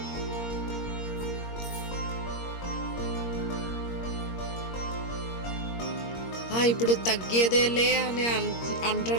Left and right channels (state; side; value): late; right; 21 ms